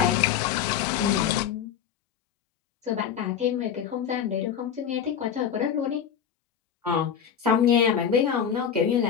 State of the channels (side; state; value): right; quieter; 8.3 dB